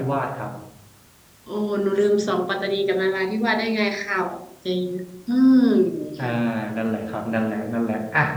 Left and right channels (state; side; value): identical; both; correlation 1.00